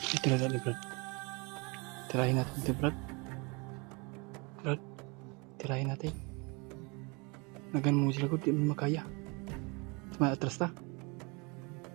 Tira ni Brad. Tirahin natin ito, Brad. Brad, tirahin natin. Nagan mo sila ko, di mo makaya. May atras ta.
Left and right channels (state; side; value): quieter; left; 29.5 dB